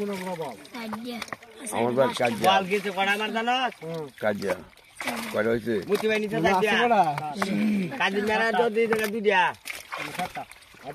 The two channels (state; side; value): identical; both; correlation 1.00